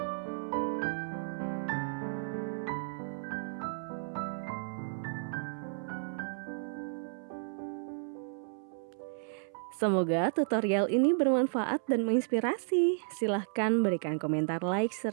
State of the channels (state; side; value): silent; left; 56 dB below the other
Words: Semoga tutorial ini bermanfaat dan menginspirasi. Silahkan berikan komentar like